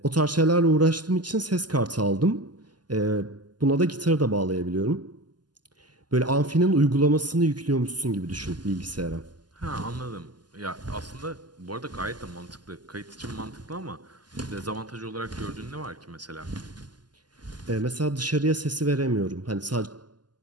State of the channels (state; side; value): late; left; 0.70 ms